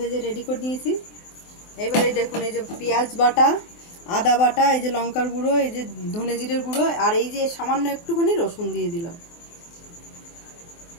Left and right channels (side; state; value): right; late; 24 ms